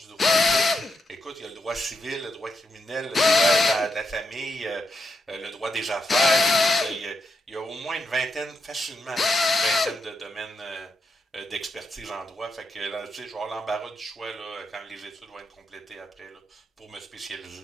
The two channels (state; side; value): normal; both; correlation 0.83